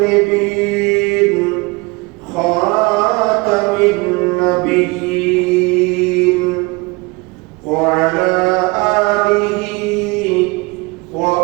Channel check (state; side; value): quieter; left; 25.8 dB